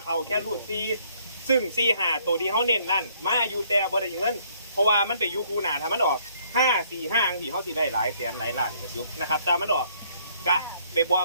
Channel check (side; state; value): both; inverted; correlation -0.65